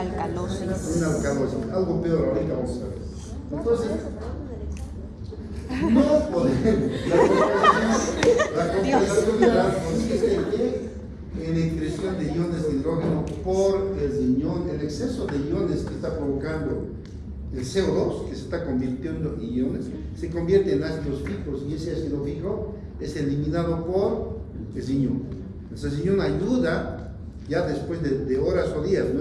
Una alcalosis, algo peor, ahorita vamos a ver. Entonces, no podemos. La compensación consiste en excreción de iones de hidrógeno por el riñón. El exceso de iones que está provocando el CO2, que se está convirtiendo en iones, se convierte en ácidos fijos, y ese ácido fijo es eliminado por el riñón. El riñón ayuda ya después de horas o días,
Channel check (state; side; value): identical; both; correlation 1.00